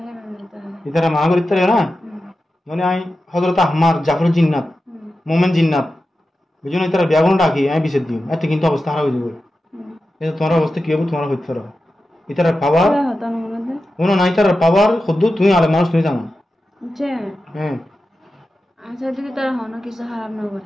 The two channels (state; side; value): normal; both; correlation 0.92